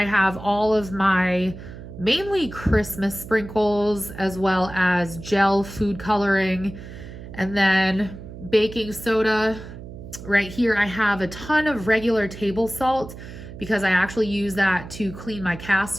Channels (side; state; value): right; noise; hum, 13 dB below the sound